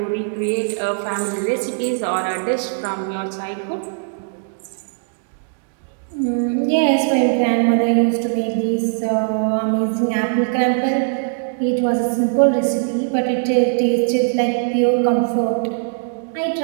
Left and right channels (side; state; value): left; silent; digital silence